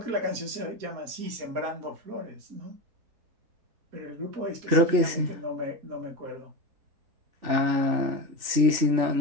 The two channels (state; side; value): late; left; 3.4 ms